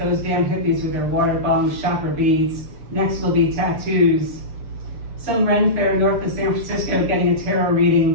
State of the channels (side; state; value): left; late; 6.6 ms